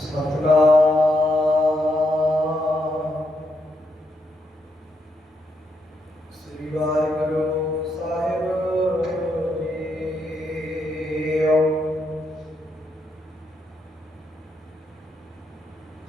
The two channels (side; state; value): both; normal; correlation 0.80